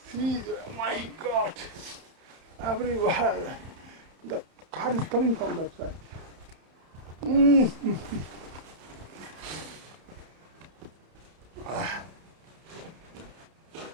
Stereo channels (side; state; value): left; late; 31 ms